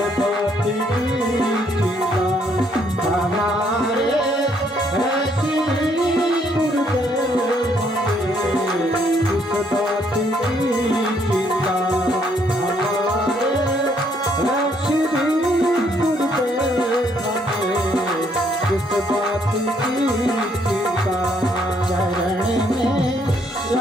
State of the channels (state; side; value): normal; both; correlation 0.69